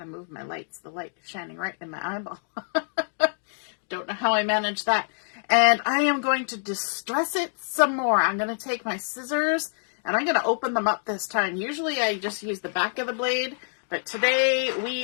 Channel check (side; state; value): right; silent; digital silence